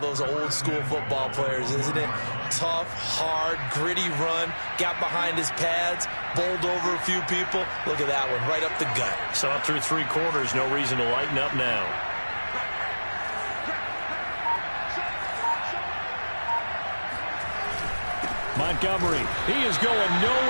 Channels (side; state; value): both; inverted; correlation -1.00